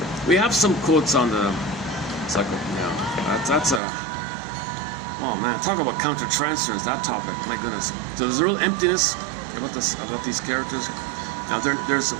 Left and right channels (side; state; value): left; drops out; at 3.8 s